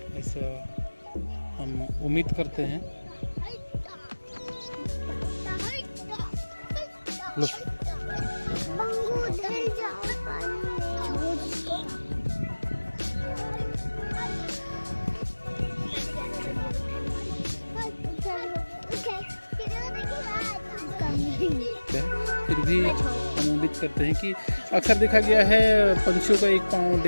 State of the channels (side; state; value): both; inverted; correlation -1.00